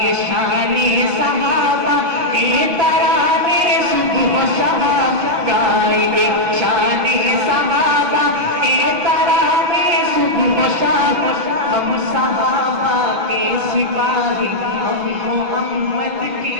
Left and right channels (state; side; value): late; left; 6.0 ms